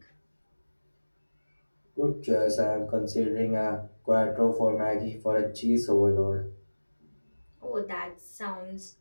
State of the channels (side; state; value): both; inverted; correlation -1.00